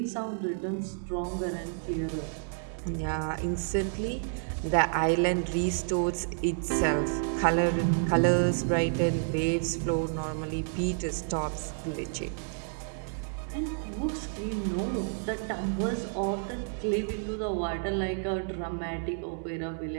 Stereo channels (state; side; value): silent; left; digital silence